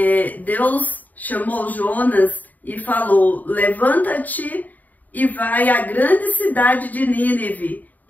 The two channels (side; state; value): right; late; 0.081 ms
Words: Deus chamou Jonas e falou: levanta-te e vai à grande cidade de Nínive